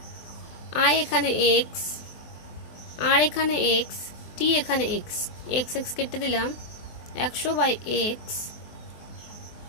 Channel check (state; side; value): late; right; 23 ms